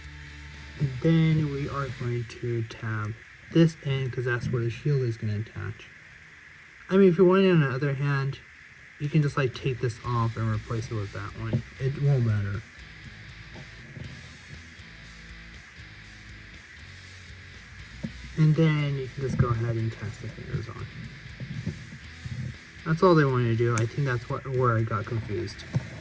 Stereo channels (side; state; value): both; identical; correlation 1.00